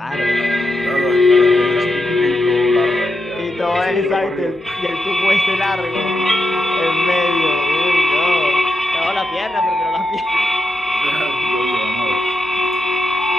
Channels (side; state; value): both; normal; correlation 0.86